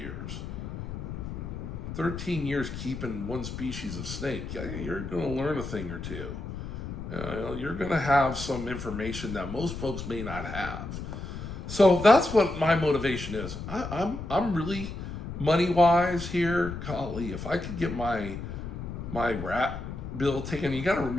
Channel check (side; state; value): left; noise; rumble, 7 dB below the sound